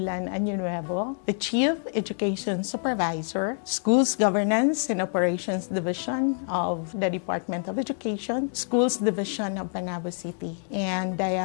Añonuevo, the Chief Education Supervisor, Schools Governance and Operations Division of the Department of Education, Schools Division of Panabo City. And I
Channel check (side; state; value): right; silent; 60 dB below the other